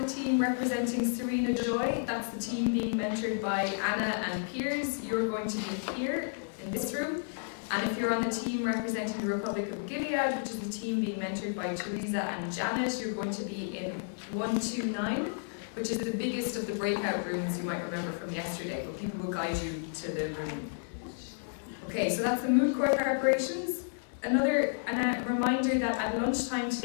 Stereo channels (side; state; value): right; silent; digital silence